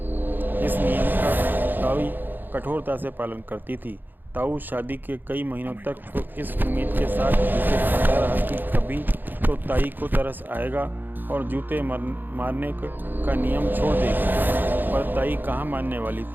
इस नियम का ताई कठोरता से पालन करती थी। ताऊ शादी के कई महीनों तक तो इस उम्मीद के साथ जूते खाता रहा कि कभी तो ताई को तरस आएगा और जूते मारने का नियम छोड़ देगी। पर ताई कहाँ मानने वाली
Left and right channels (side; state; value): left; late; 0.091 ms